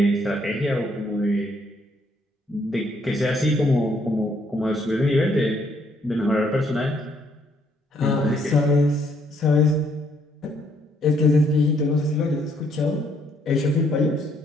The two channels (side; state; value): both; normal; correlation 0.69